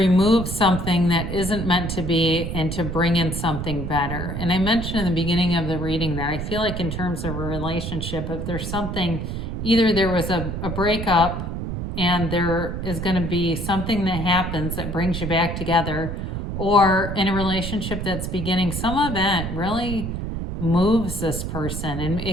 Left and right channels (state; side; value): noise; right; rumble, 4 dB below the sound